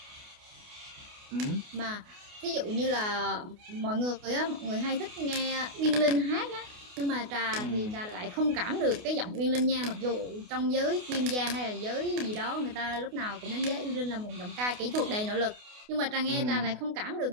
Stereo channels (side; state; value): left; late; 28 ms